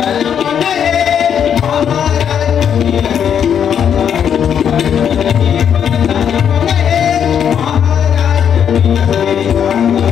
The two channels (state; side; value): quieter; right; 8.4 dB